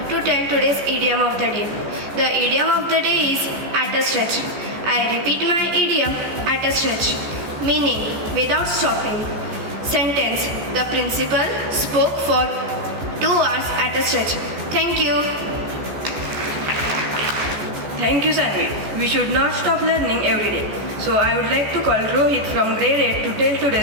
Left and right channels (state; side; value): late; left; 14 ms